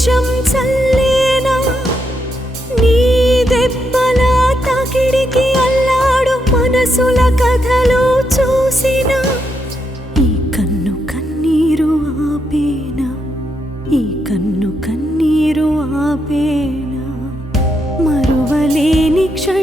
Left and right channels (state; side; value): normal; both; correlation 0.80